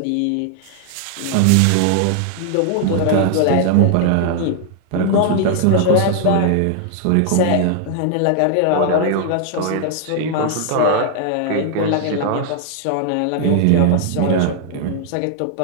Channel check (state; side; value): different; both; correlation 0.00